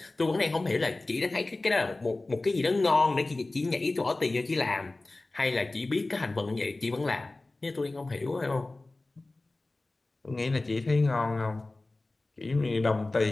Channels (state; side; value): quieter; right; 3.0 dB